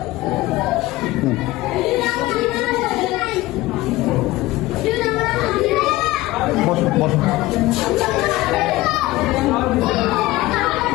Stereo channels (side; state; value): right; quieter; 18.3 dB